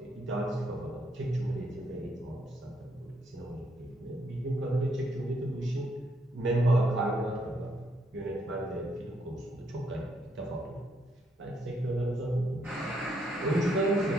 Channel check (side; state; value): both; normal; correlation 0.74